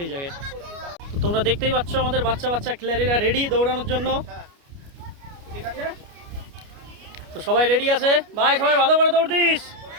এই জায়গায়। তো তোমরা দেখতেই পাচ্ছ আমাদের বাচ্চা খেলাড়িরা রেডি দৌড়ানোর জন্য। তো সবাই রেডি আছে ভাই, সবাই ভালো করে দৌড় দিস।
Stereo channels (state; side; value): late; left; 29 ms